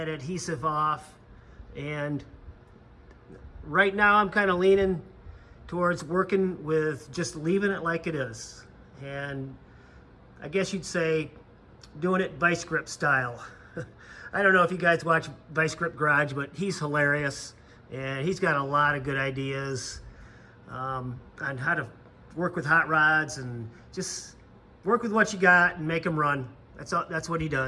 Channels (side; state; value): both; identical; correlation 1.00